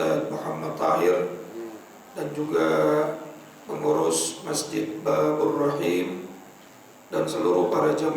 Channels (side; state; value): both; identical; correlation 1.00